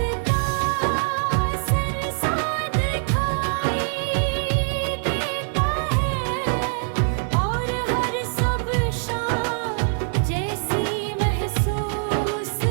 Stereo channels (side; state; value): left; silent; 63 dB below the other